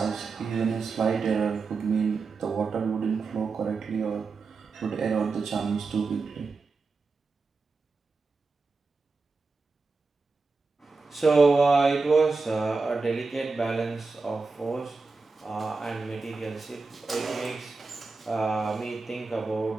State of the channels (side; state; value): left; quieter; 4.2 dB